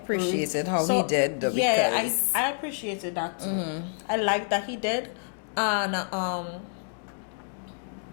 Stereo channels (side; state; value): right; silent; digital silence